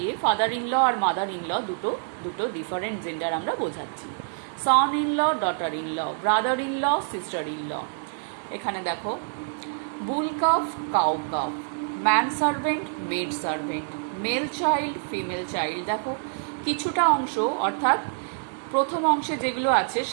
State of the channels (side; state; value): left; silent; digital silence